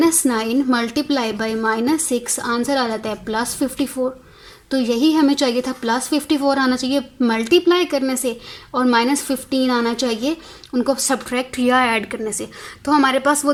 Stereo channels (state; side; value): identical; both; correlation 1.00